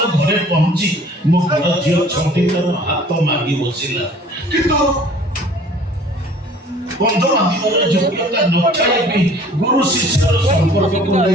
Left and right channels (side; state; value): both; normal; correlation 0.51